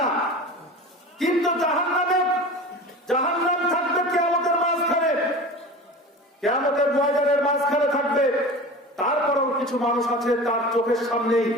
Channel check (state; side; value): normal; both; correlation 0.34